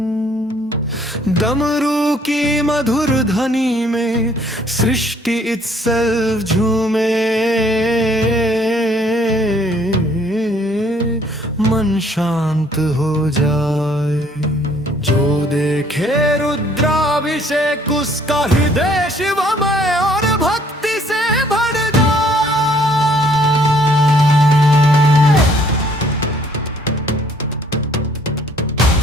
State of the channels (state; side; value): normal; both; correlation 0.62